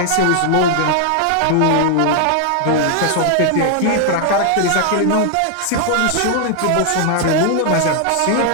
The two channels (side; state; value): both; different; correlation 0.00